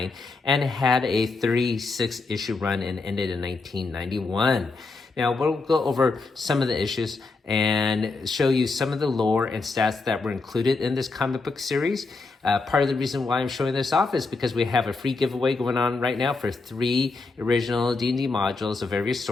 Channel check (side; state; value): right; quieter; 3.8 dB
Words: and had a 36-issue run and ended in 1991. Now, we'll go over some of the issues and show you some of the lore and stats that were included in this comic book series. Part of the reason why I'm showing this off is because we have a free giveaway going on right now for 3 original D&D modules of various